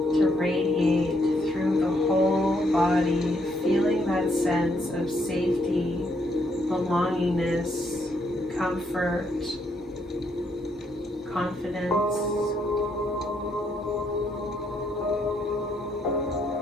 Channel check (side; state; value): both; normal; correlation 0.74